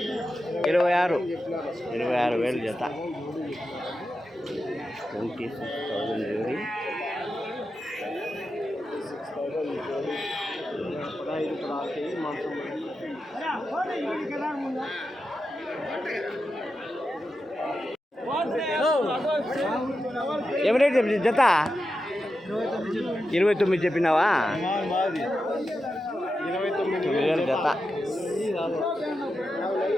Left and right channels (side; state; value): both; normal; correlation 0.89